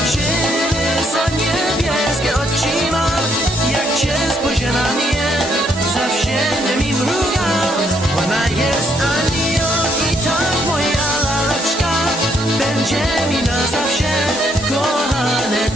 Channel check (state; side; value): normal; both; correlation 0.71